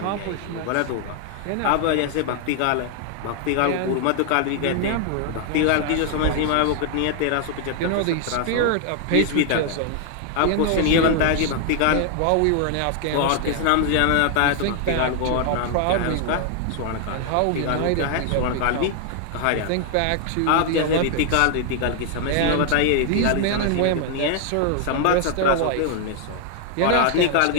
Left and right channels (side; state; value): both; different; correlation 0.00